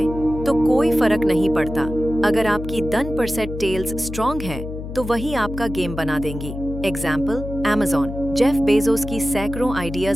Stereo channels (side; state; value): left; noise; hum, 8 dB below the sound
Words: तो कोई फर्क नहीं पड़ता। अगर आपकी 10% टेल्स स्ट्रॉन्ग है तो वही आपका गेम बना देंगी। Example, Amazon। जेफ बेजोस की सैकड़ों